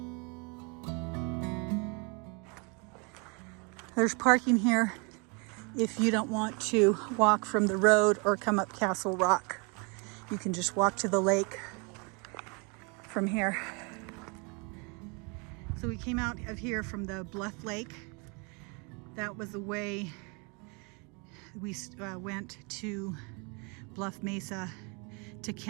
There's parking here if you don't want to walk from the road or come up Castle Rock. You can just walk to the lake from here. So we came out of here from the Bluff Lake. That was the way we went to Bluff Mesa to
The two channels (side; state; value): left; quieter; 32.4 dB